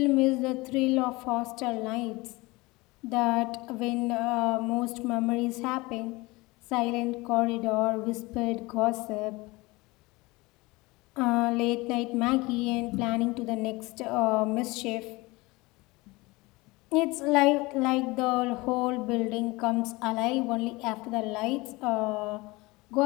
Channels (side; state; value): right; quieter; 22.7 dB